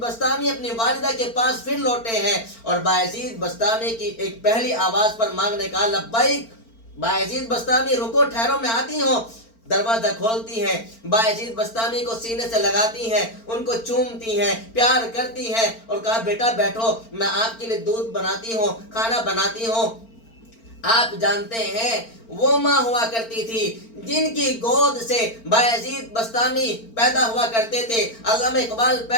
اپنی والدہ کے پاس پھر لوٹے ہیں، اور بایزید بسطامی کی ایک پہلی آواز پر مانگنے کا لبیک، بایزید بسطامی رکو، ٹھہرو، میں آتی ہوں۔ دروازہ کھولتی ہیں، بایزید بسطامی کو سینے سے لگاتی ہیں، ان کو چومتی ہیں، پیار کرتی ہیں اور کہا بیٹا بیٹھو، میں آپ کے لیے دودھ بناتی ہوں، کھانا بناتی ہوں۔ آپ جانتے ہیں وہ ماں ہوا کرتی تھی جن کی گود سے بایزید بسطامی پیدا ہوا کرتے تھے، علامہ اقبال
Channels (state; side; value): late; right; 4.4 ms